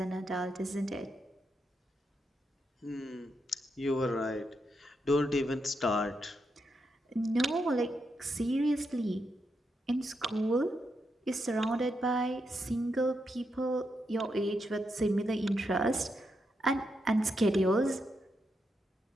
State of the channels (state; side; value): normal; both; correlation 0.83